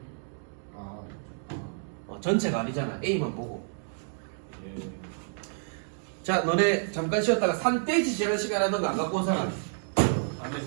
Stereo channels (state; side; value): silent; left; digital silence